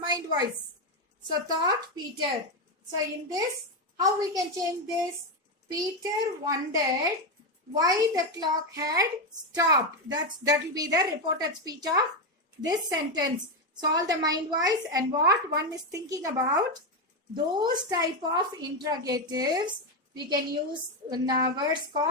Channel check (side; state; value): both; normal; correlation 0.09